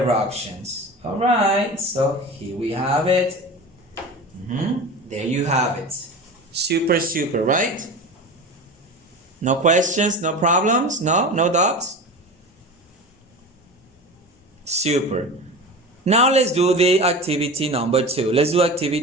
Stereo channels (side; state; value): both; normal; correlation 0.31